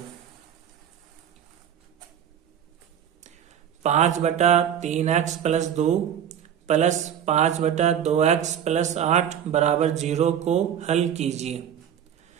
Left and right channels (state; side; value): quieter; left; 9.3 dB